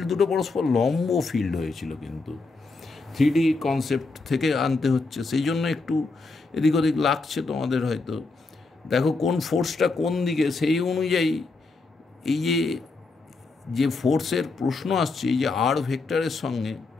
দুটো পরস্পর লম্ব ফিল্ড হয়েছিল, কিন্তু 3D কনসেপ্ট থেকে আনতে হচ্ছে, সেই জন্য একটু এদিক ওদিক লাগছে তোমাদের হয়তো। দেখো কোন ফোর্সটা কোন দিকে, সেই অনুযায়ী এই যে ফোর্সের প্রশ্ন আসছে, এই যে আর ভেক্টরের সঙ্গে,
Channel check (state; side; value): quieter; right; 3.7 dB